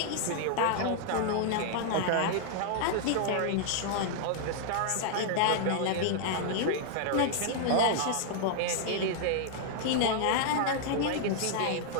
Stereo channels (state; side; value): different; both; correlation -0.01